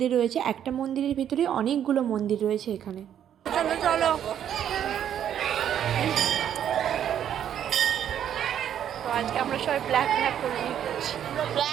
রয়েছে। একটা মন্দিরের ভিতরে অনেকগুলো মন্দির রয়েছে এখানে। চলো চলো, তো আজকে আমরা সবাই ব্ল্যাক করে নিচ্ছি,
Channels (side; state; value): left; quieter; 9.8 dB